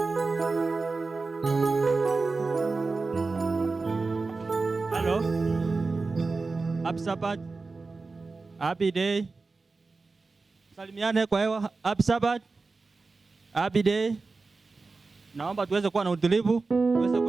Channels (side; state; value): left; quieter; 3.9 dB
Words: Hello. Happy Sabbath. Happy day. Salimiane kwa hewa. Happy Sabbath. Happy day. naomba tuweze kuwa na utulivu, tuweze